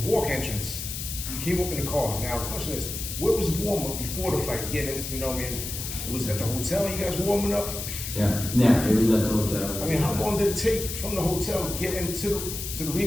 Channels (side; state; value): left; noise; hiss, 6 dB below the sound